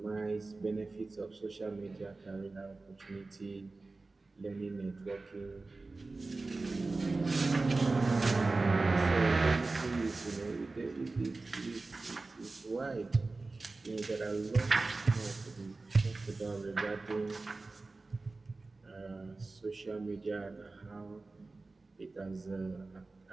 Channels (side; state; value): left; quieter; 3.5 dB